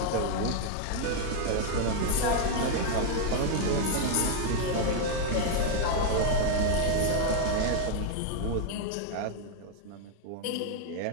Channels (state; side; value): different; both; correlation 0.00